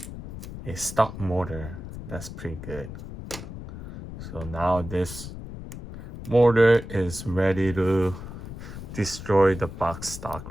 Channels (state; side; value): noise; left; rumble, 11 dB below the sound